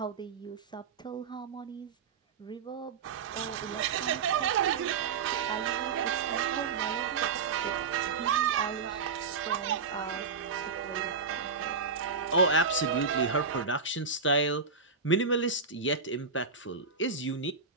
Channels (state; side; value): quieter; left; 5.2 dB